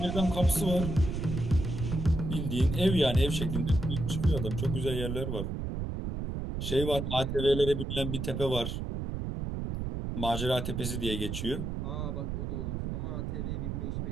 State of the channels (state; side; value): noise; right; rumble, 3 dB below the sound